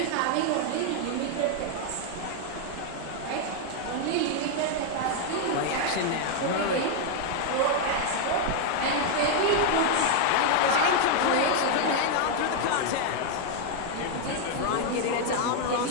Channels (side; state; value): both; different; correlation 0.00